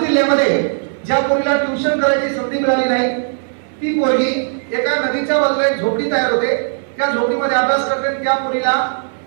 ज्या पोरीला ट्युशन करायची संधी मिळाली नाही, ती पोरगी एका नदीच्या बाजूला एक झोपडी तयार होते. त्या झोपडीमध्ये अभ्यास करते. त्या पोरीला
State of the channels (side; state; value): left; silent; digital silence